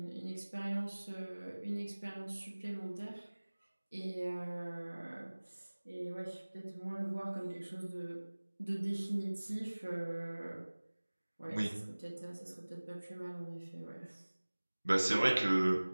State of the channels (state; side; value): inverted; both; correlation -1.00